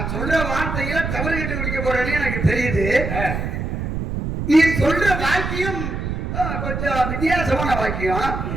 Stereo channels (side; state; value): right; noise; rumble, 3 dB below the sound